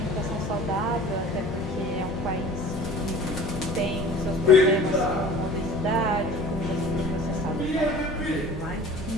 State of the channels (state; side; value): normal; both; correlation 0.44